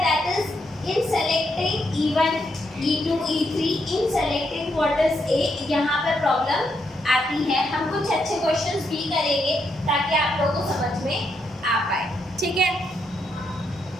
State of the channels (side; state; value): both; normal; correlation 0.79